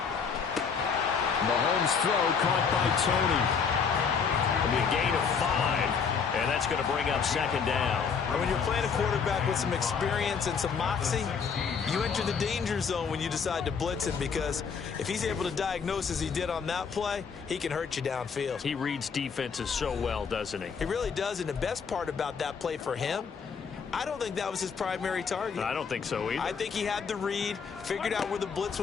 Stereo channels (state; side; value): quieter; right; 6.1 dB